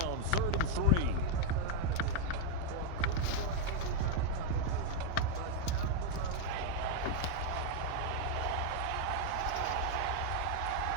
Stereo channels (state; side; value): different; both; correlation -0.01